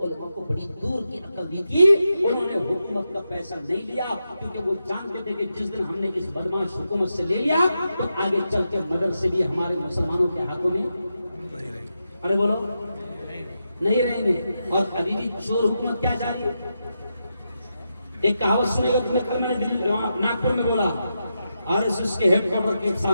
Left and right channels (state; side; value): inverted; both; correlation -0.87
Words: علماء کو بڑی دور کی عقل دی تھی، انہوں نے حکومت کا پیسہ نہیں لیا، کیونکہ وہ جانتے تھے کہ جس دن ہم نے اس بدماش حکومت سے لے لیا تو آگے چل کے مدرسے بھی ہمارے مسلمانوں کے ہاتھوں میں، ارے بولو، نہیں رہیں گے۔ اور ابھی بھی چور حکومت کیا جاری ہے؟ ایک کہاوت سنے گا تمہیں، کل میں نے ناگپور میں بولا، RSS کے ہیڈ کوارٹر کے